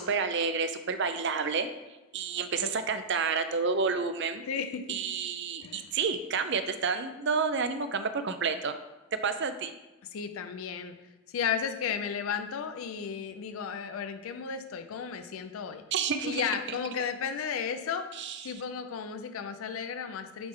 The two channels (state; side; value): normal; both; correlation -0.12